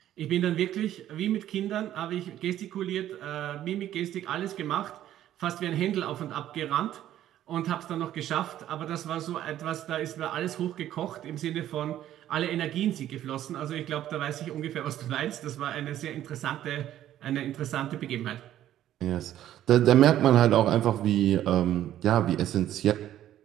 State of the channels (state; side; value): quieter; left; 12.2 dB